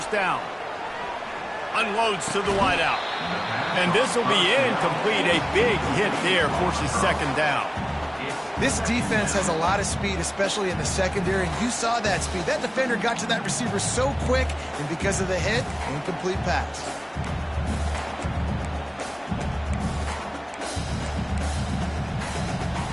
down. Unloads to the wideout. And this will be incomplete. A big hit there forces 2nd down. This defense has a lot of speed, especially in the secondary, and you saw that speed. That defender got to that receiver so quick, and because of the hit, incomplete pass.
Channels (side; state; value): both; identical; correlation 1.00